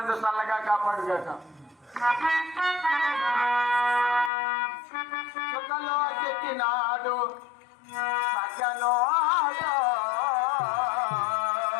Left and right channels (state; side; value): drops out; right; at 4.3 s